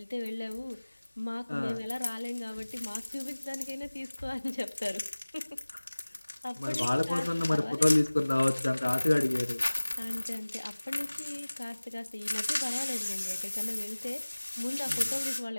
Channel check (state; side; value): inverted; both; correlation -1.00